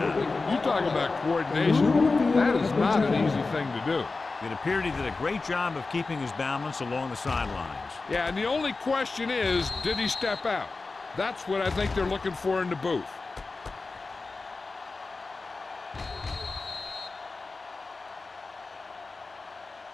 You talk about coordination. That is not an easy thing to do. It appeared he did a great job of keeping his balance along the sidelines. Yeah, and the only question is, did he step out? That's what I think they're looking for in the booth.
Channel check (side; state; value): right; quieter; 3.8 dB